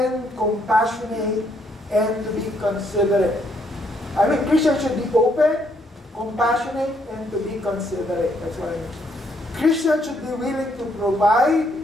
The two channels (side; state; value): both; normal; correlation 0.71